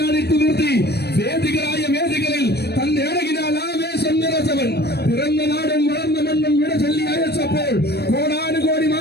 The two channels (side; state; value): right; late; 0.47 ms